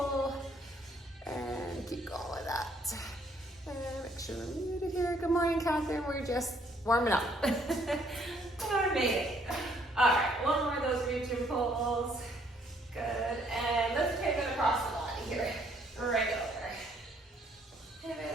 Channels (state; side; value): normal; both; correlation 0.66